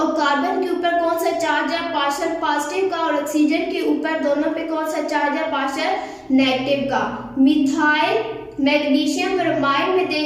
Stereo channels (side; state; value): both; identical; correlation 1.00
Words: कार्बन के ऊपर कौन सा चार्ज है, पार्शियल पॉजिटिव का, और ऑक्सीजन के ऊपर दोनों पे कौन सा चार्ज है, पार्शियल नेगेटिव का। मिथाइल मैग्नीशियम ब्रोमाइड में